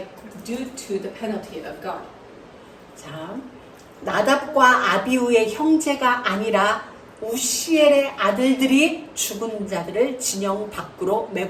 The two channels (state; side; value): identical; both; correlation 1.00